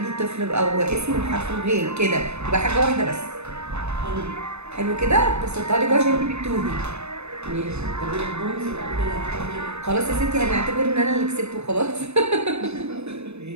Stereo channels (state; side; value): late; left; 0.81 ms